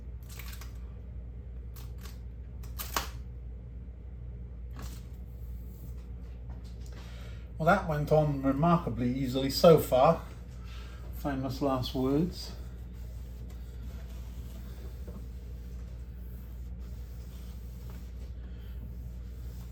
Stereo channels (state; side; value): identical; both; correlation 1.00